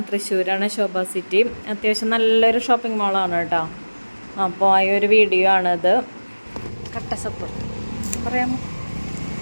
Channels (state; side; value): inverted; both; correlation -1.00